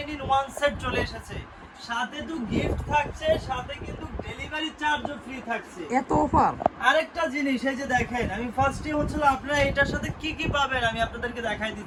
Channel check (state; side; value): identical; both; correlation 1.00